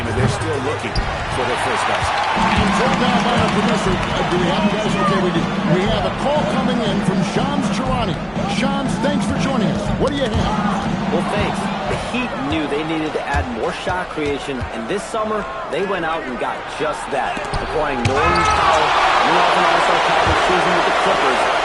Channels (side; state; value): both; identical; correlation 1.00